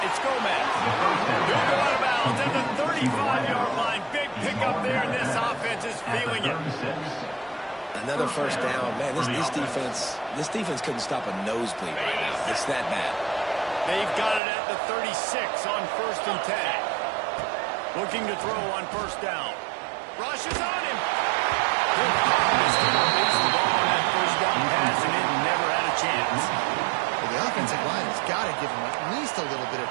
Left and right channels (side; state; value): left; drops out; at 14.4 s